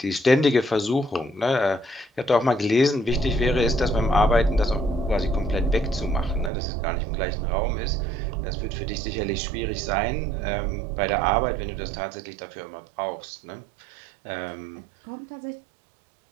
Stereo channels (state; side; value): drops out; left; at 6.5 s